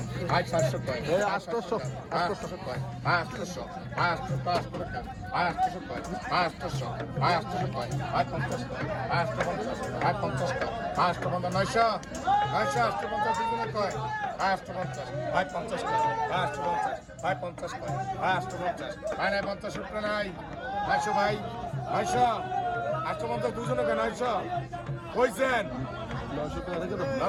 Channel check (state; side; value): identical; both; correlation 1.00